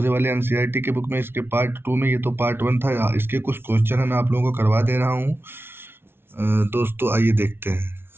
वाले एनसीईआरटी के बुक में, इसके पार्ट 2 में। ये तो पार्ट 1 था, इसके कुछ क्वेश्चन है मैं आप लोगों को करवा दे रहा हूँ। दोस्तों, आइए देखते हैं।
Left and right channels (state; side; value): late; left; 0.11 ms